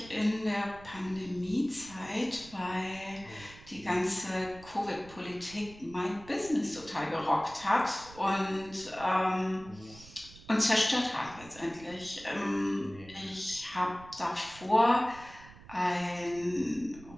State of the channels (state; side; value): noise; right; rumble, 19 dB below the sound